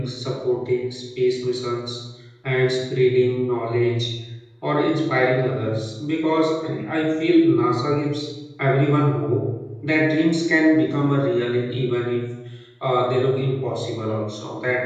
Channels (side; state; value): both; identical; correlation 1.00